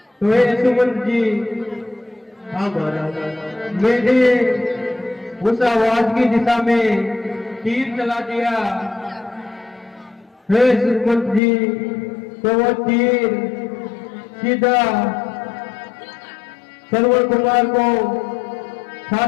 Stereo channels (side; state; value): right; drops out; at 11.4 s